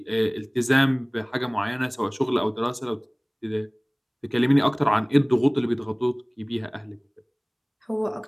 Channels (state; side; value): identical; both; correlation 1.00